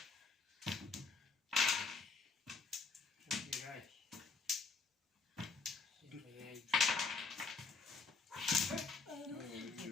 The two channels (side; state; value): right; quieter; 4.5 dB